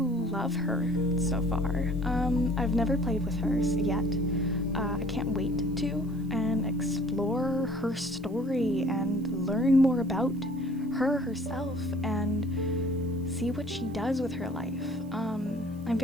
her so far. I've never played with her yet. I can't wait to and explore her story and learn more about her herself and see what she does with her life. I'm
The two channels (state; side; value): noise; right; hiss, 29 dB below the sound